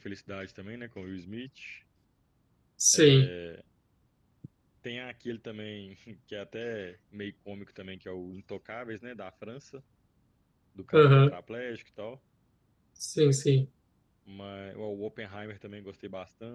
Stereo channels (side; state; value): both; identical; correlation 1.00